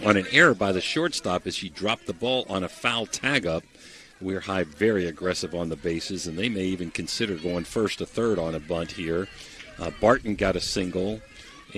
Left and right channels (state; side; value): identical; both; correlation 1.00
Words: on an error by the shortstop as she dropped the ball on a foul tag-up. Weir High very aggressive on the bases, and they may even consider going first to third on a bunt here. Barton got a single